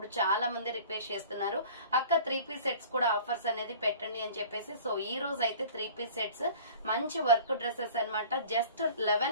చాలా మంది రిక్వెస్ట్ చేస్తున్నారు, అక్క 3 పీస్ సెట్స్ కూడా ఆఫర్స్ అనేది పెట్టండి అని చెప్పేసి. సో ఈ రోజు అయితే 3 పీస్ సెట్స్ మంచి వర్క్ డ్రెస్సెస్ అన్నమాట. జస్ట్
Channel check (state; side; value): inverted; both; correlation -0.45